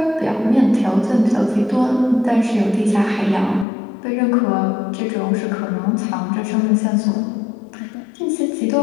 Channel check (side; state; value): right; drops out; at 3.7 s